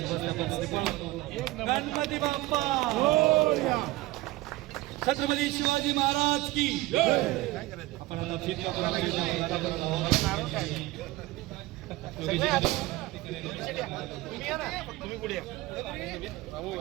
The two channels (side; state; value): left; quieter; 18.9 dB